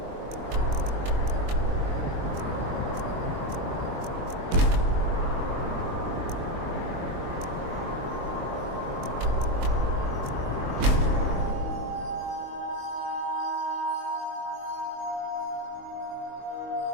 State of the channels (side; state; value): left; late; 23 ms